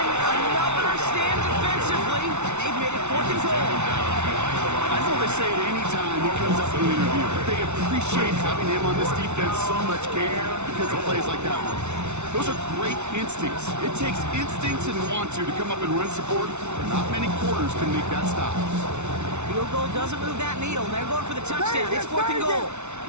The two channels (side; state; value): left; late; 0.82 ms